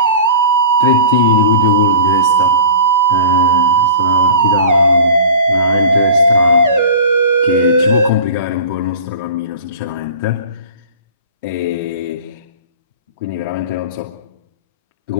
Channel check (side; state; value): both; inverted; correlation -0.37